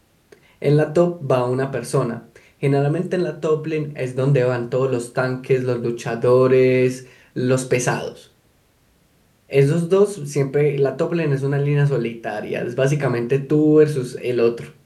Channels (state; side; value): identical; both; correlation 1.00